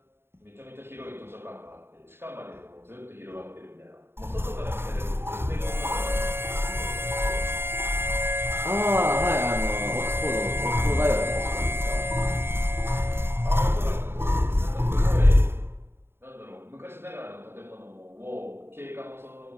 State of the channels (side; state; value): left; late; 0.11 ms